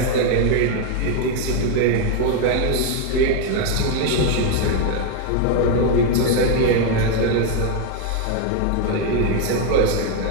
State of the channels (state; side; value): different; both; correlation 0.01